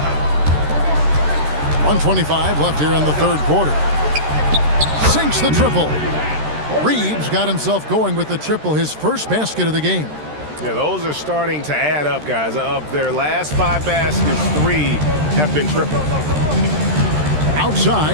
1:25 left here in the third quarter. Sinks the triple. Reeves got himself going with the triple, his first basket of the game. Yeah, those are starting to add up, guys. Of their last 5 baskets, 3 have been triples.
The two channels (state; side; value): late; left; 13 ms